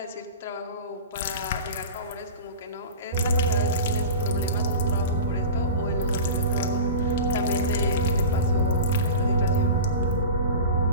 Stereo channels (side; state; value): both; inverted; correlation -0.32